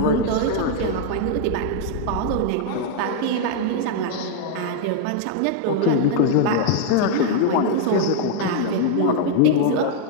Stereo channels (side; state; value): both; different; correlation 0.00